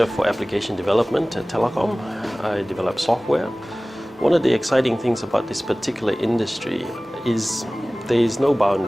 for Application Development at Telecom. I develop software. One of the exciting things about this particular industry is there is no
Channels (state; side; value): normal; both; correlation 0.98